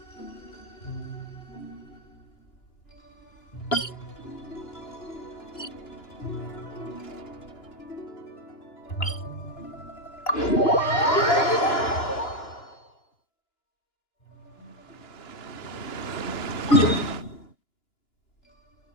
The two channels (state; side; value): late; right; 2.9 ms